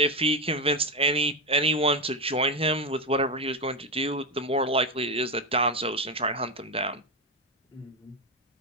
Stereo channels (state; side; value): normal; both; correlation 0.11